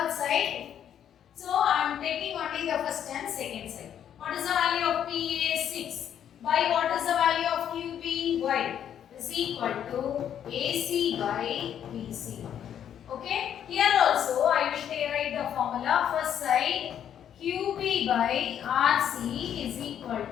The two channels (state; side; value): quieter; right; 9.5 dB